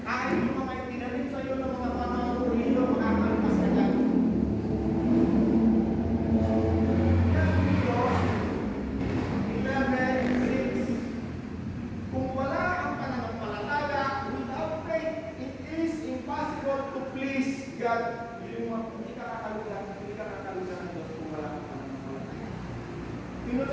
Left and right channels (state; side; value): identical; both; correlation 1.00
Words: Kahit yung mga itinanim sa iyo ng mga panahon o hilo, makakalpas ka dyan. Yan ang Diyos, Sino